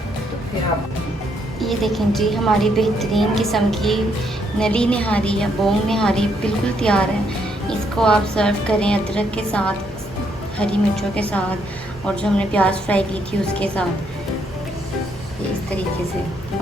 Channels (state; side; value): normal; both; correlation 0.73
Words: तो फिर आप ये देखें जी, हमारी बेहतरीन किस्म की नली निहारी या बोंग निहारी बिल्कुल तैयार है। इसको आप सर्व करें अदरक के साथ, हरी मिर्चों के साथ और जो हमने प्याज फ्राई की थी उसके साथ, इस तरीके से।